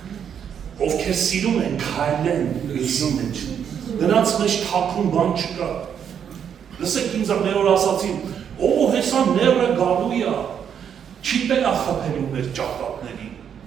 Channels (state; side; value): quieter; left; 8.2 dB